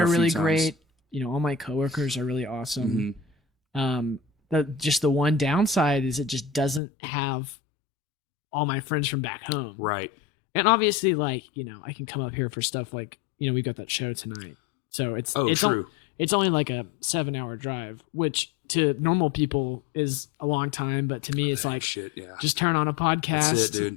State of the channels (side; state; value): right; drops out; at 6.8 s